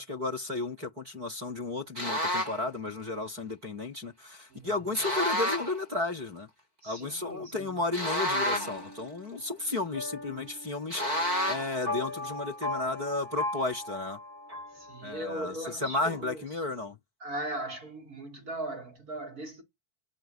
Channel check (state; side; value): late; left; 4.5 ms